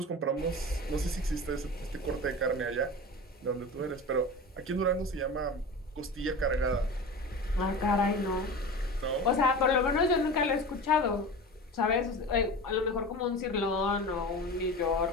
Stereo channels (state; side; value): normal; both; correlation 0.31